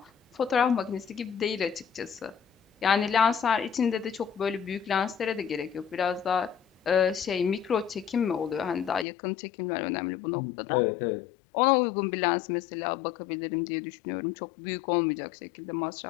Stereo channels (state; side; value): drops out; right; at 9.1 s